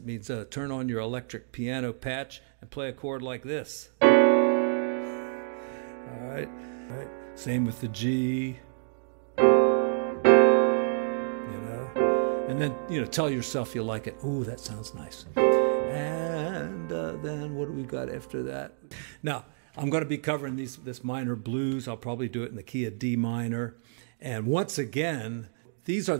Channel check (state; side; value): silent; left; digital silence